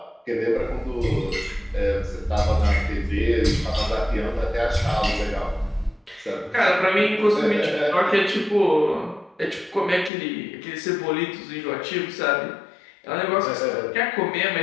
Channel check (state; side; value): drops out; right; at 10.1 s